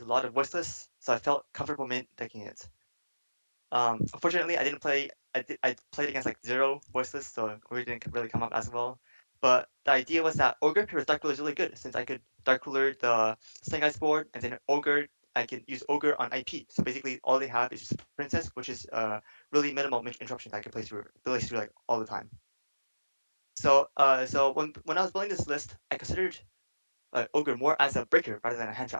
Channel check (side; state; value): both; inverted; correlation -1.00